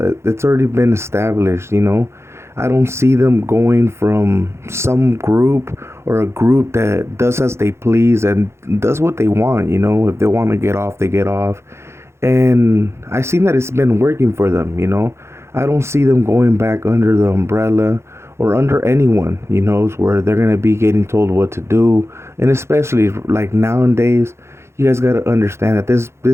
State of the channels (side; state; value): left; late; 0.13 ms